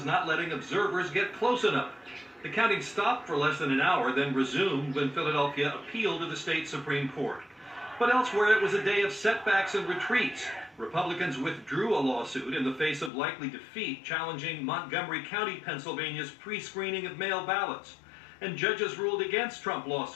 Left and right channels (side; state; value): right; drops out; at 13.1 s